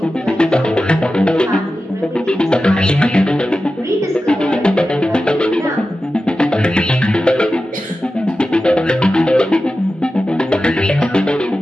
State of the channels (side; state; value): both; normal; correlation 0.93